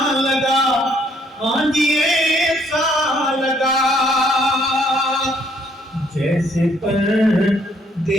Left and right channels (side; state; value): both; normal; correlation 0.67